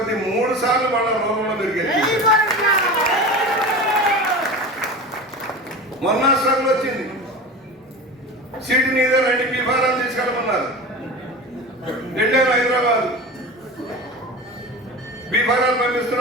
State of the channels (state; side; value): normal; both; correlation 0.30